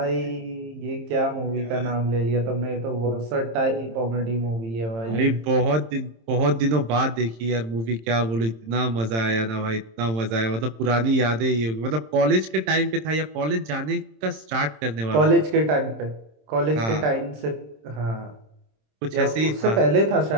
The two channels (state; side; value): late; left; 26 ms